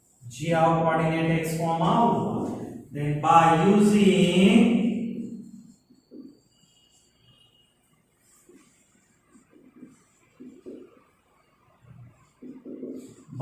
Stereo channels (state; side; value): identical; both; correlation 1.00